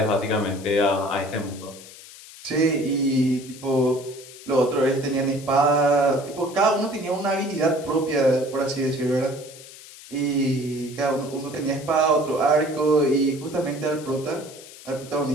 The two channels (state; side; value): noise; left; hiss, 18 dB below the sound